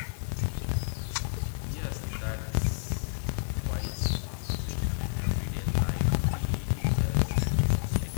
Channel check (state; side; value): silent; right; digital silence